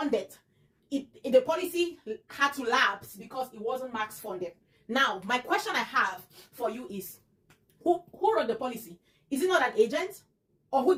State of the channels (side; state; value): both; identical; correlation 1.00